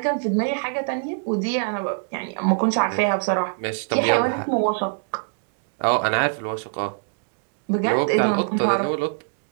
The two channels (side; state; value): left; silent; digital silence